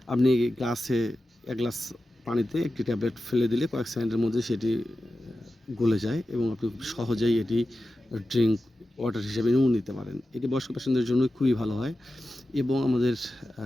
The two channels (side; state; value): both; normal; correlation 0.93